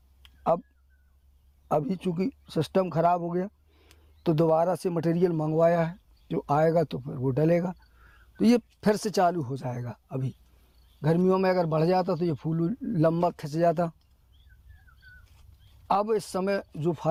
अभी चूँकि सिस्टम ख़राब हो गया तो दोबारा से मटेरियल मंगवाया है, जो आएगा तो फिर वो डलेगा, तो ये फिर से चालू हो जाएगा। अभी गर्मियों में अगर बढ़ जाता तो ये फूल लंबा खिंच जाता। अब इस समय जो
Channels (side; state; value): both; identical; correlation 1.00